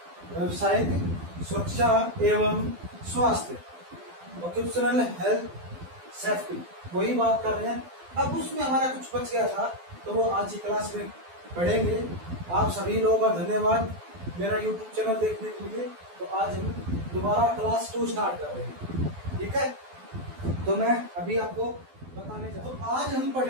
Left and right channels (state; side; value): late; left; 12 ms